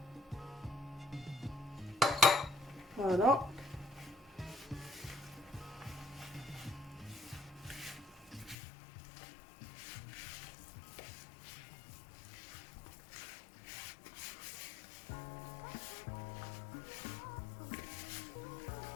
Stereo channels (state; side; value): drops out; right; at 8.6 s